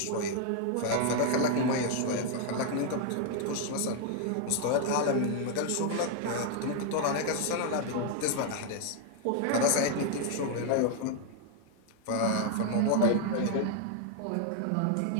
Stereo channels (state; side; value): different; both; correlation 0.01